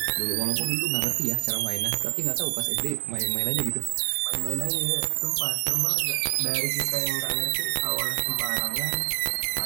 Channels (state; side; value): silent; left; digital silence